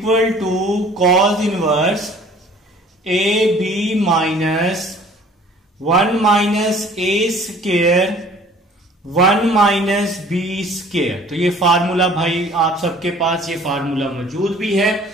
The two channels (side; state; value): both; normal; correlation 0.51